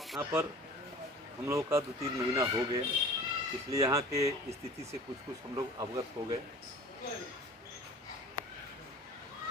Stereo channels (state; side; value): normal; both; correlation 0.43